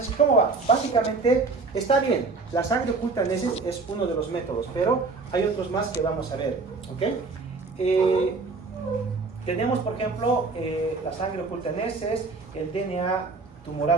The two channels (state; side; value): quieter; left; 4.0 dB